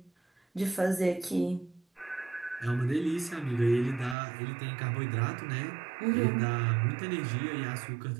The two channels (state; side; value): drops out; left; at 4.2 s